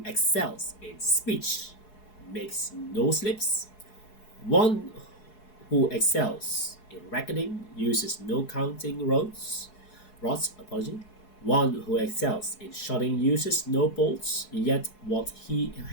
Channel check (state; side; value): late; right; 4.7 ms